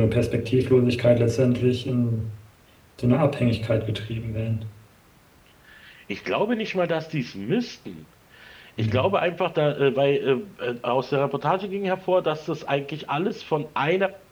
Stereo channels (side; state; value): both; identical; correlation 1.00